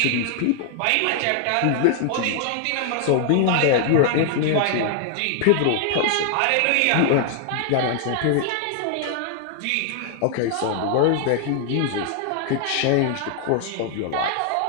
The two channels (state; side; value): different; both; correlation 0.00